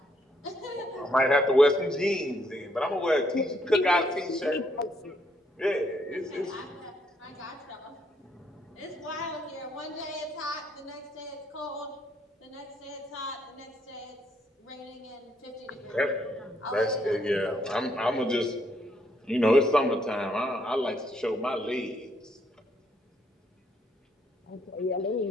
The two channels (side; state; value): both; normal; correlation 0.72